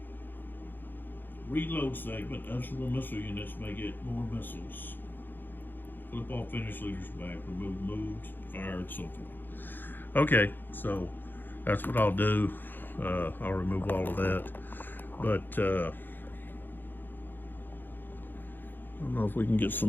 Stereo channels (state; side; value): late; right; 0.093 ms